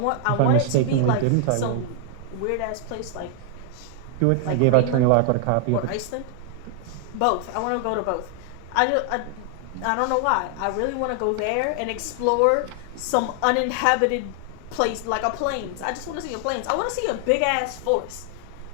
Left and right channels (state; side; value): different; both; correlation 0.00